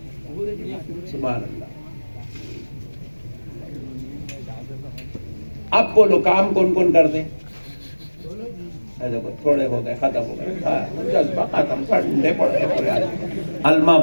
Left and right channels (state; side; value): inverted; both; correlation -1.00